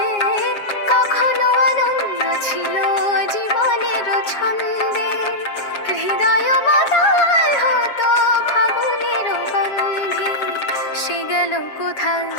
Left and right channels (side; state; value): right; late; 7.4 ms